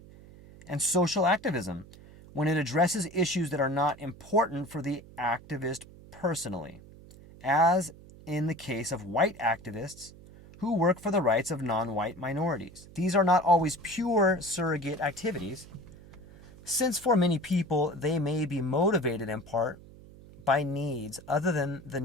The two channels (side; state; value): right; noise; hum, 20 dB below the sound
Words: and social activism, when it addresses issues that are not important for the activist personally, as in the case of white activists who work for the rights of non-white minorities. These are not always pure surrogate activities, since for many people they may be motivated in part by needs other than the